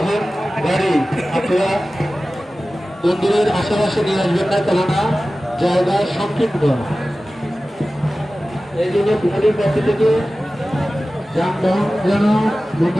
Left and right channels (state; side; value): normal; both; correlation 0.96